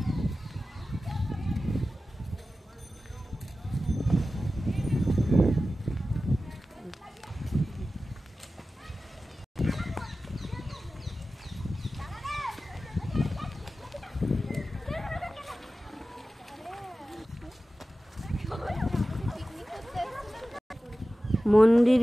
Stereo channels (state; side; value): normal; both; correlation 0.95